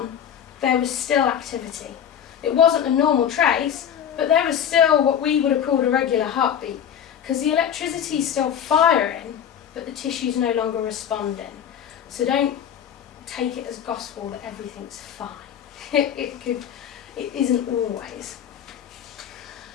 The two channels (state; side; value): quieter; right; 8.9 dB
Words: there was still activity. It wasn't a normal trace, but there was still what we would have called a regular heartbeat, because the electricity is still firing, but the tissue's no longer responding. So don't take it as gospel that everything's fine. It isn't always.